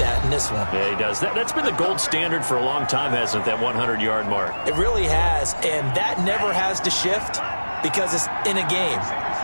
in this one. Yeah, he does. That's been the gold standard for a long time, hasn't it, that 100-yard mark? It really has, and that never has to shift because it's in a game.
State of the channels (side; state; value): both; inverted; correlation -1.00